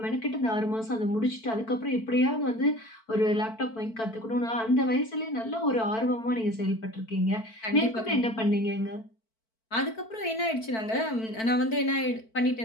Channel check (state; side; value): late; right; 4.5 ms